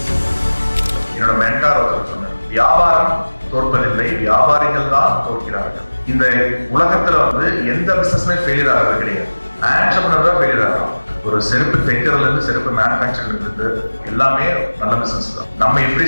என்னோட மென்டார் ஒருத்தர் சொன்னார், வியாபாரம் தோற்பதில்லை, வியாபாரிகள் தான் தோற்கிறார்கள். இந்த உலகத்துல வந்து எந்த பிசினஸ்மே ஃபெயிலியர் ஆகிறது கிடையாது. ஆண்டர்பிரனர் தான் ஃபெயிலியர் ஆகும். ஒரு செருப்பு தைக்கிறதுல இருந்து செருப்பு மேனுஃபேக்சரிங் இருந்து எல்லாமே நல்ல பிசினஸ் தான். நம்ம எப்படி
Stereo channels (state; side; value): inverted; both; correlation -1.00